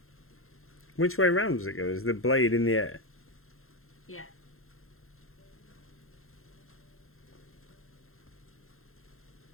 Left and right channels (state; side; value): late; right; 0.61 ms